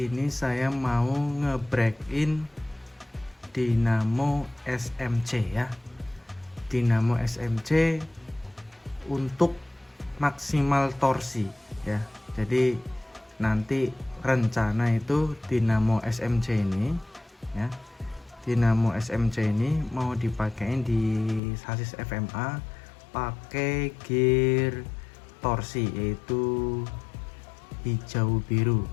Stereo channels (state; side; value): drops out; right; at 21.4 s